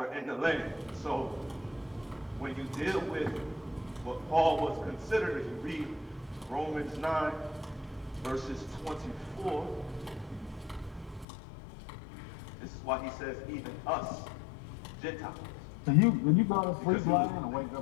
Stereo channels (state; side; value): drops out; right; at 11.2 s